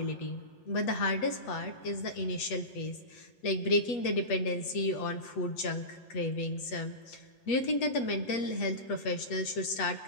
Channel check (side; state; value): right; late; 8.4 ms